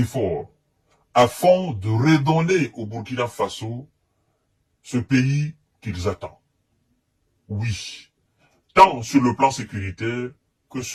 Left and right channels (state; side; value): identical; both; correlation 1.00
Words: afin de redonner au Burkina Faso ce pays qu'ils attendent. Oui, tant sur le plan sécuritaire que